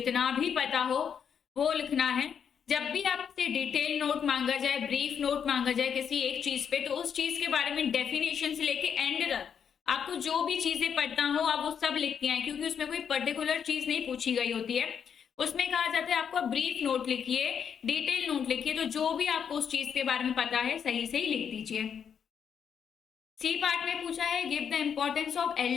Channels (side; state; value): right; quieter; 7.5 dB